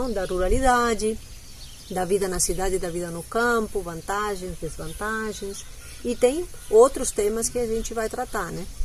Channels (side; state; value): both; identical; correlation 1.00